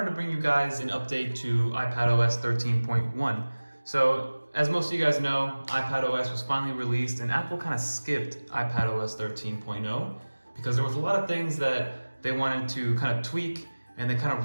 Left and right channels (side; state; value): both; inverted; correlation -1.00